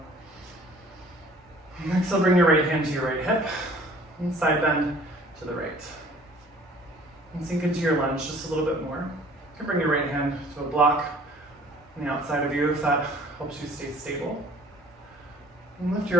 And exhale, bring your right hand to your right hip. And side bend to the right. And sink into your lunge just a little bit more. You can bring your right hand to a block on the outside of you if that helps you stay stable. And lift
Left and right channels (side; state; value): both; normal; correlation 0.52